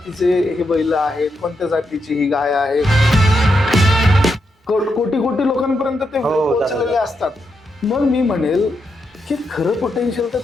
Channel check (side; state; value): both; normal; correlation 0.83